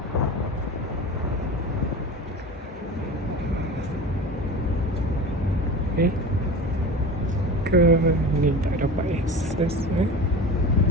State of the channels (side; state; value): both; normal; correlation 0.32